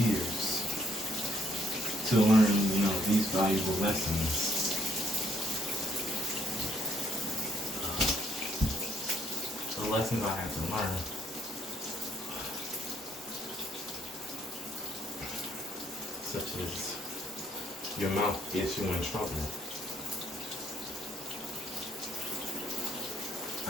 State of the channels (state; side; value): normal; both; correlation 0.70